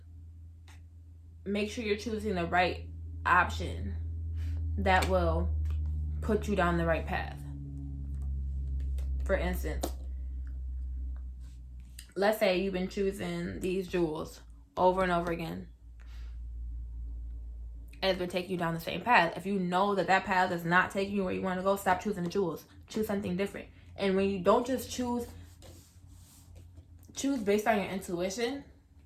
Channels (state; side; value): identical; both; correlation 1.00